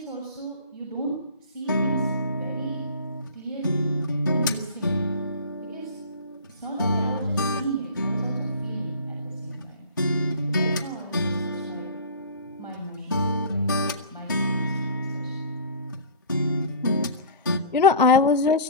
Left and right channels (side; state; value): both; inverted; correlation -0.39